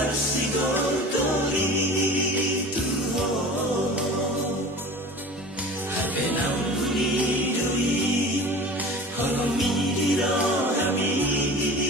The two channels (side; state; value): both; normal; correlation 0.38